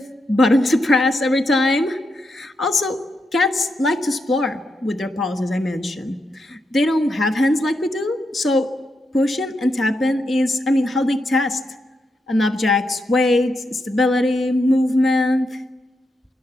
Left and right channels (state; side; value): normal; both; correlation 0.83